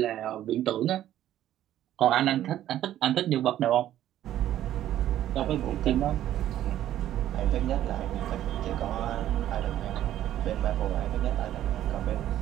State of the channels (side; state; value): left; quieter; 12.3 dB